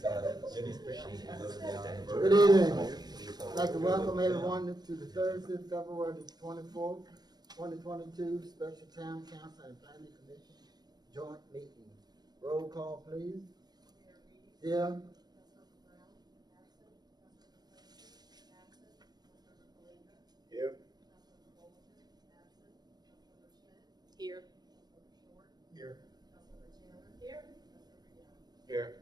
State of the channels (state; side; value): late; left; 0.19 ms